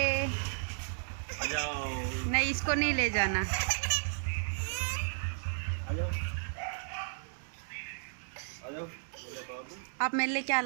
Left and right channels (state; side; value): silent; left; digital silence